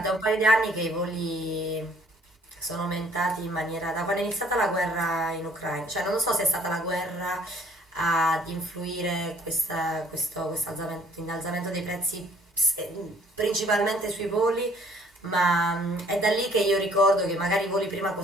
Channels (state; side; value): normal; both; correlation 0.59